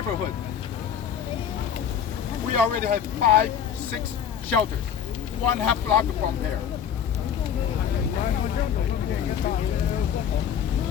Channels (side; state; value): right; quieter; 8.4 dB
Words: We already have 5, 6 shelters, 1/2 block from here.